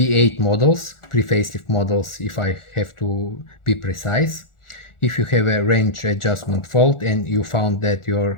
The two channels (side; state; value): right; late; 1.4 ms